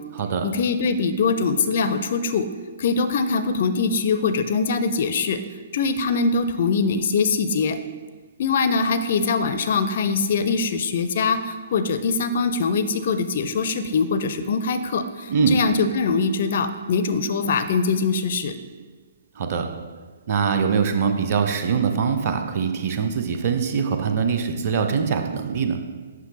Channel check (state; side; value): inverted; both; correlation -0.51